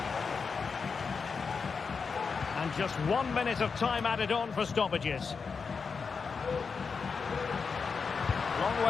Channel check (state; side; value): quieter; right; 5.3 dB